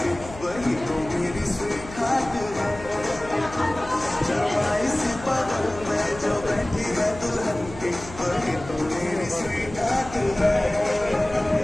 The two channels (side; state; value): left; noise; hum, 15 dB below the sound